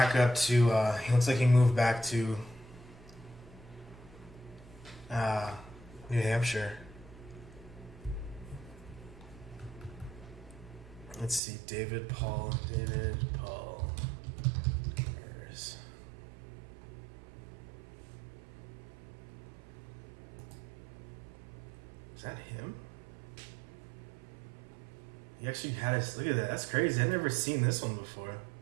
up to. New Hampshire. Let's see, David Paul Demers. Is that him? He actually had us. Look at that. That's crazy. I've never seen this one before.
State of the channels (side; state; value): left; drops out; at 11.4 s